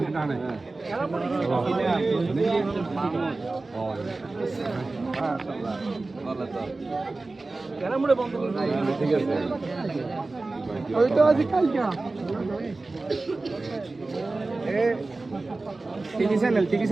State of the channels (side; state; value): left; quieter; 3.3 dB